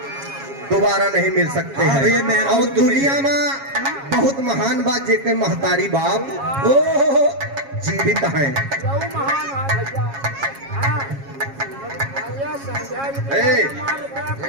दोबारा नहीं मिल सकते हैं। और दुनिया में बहुत महान बात जेके महतारी बाप जीवित हैं।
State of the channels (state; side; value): late; left; 7.3 ms